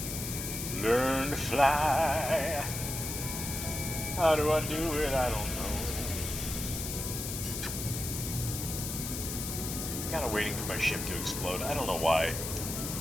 Learn to fly. How do I do it? I don't know. I'm kind of waiting for my ship to explode. I don't know why.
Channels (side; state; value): left; noise; hiss, 5 dB below the sound